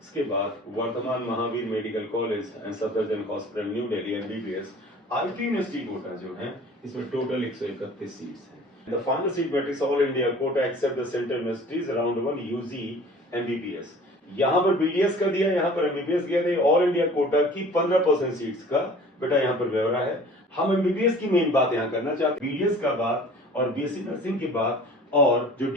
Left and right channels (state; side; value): normal; both; correlation 0.46